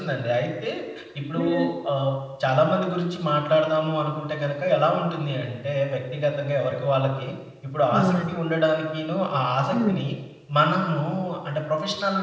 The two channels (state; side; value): identical; both; correlation 1.00